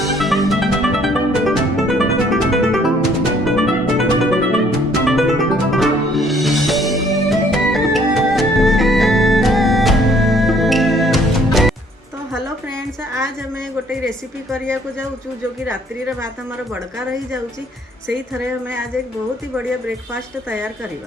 तो हेलो फ्रेंड्स, आज हमें गोटे रेसिपी करिया को जाऊँ जो कि रात्रि रे भात हमारा बड़का रही जाऊँची। से थरे हमें आज एक बहुत ही बढ़िया ब्रेकफास्ट तैयार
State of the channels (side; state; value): both; normal; correlation 0.62